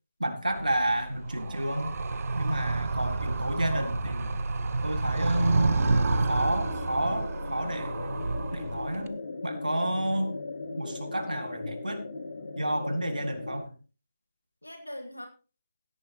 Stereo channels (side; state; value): both; inverted; correlation -0.92